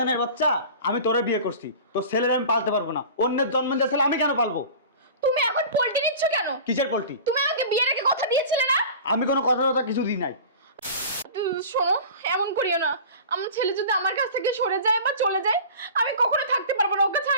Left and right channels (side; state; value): both; inverted; correlation -0.38